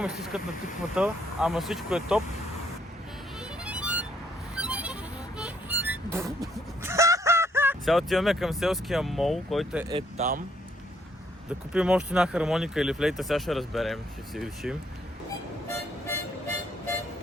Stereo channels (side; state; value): both; normal; correlation 0.69